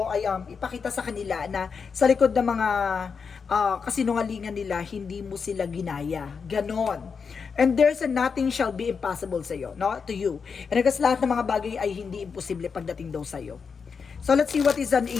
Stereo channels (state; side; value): quieter; right; 5.7 dB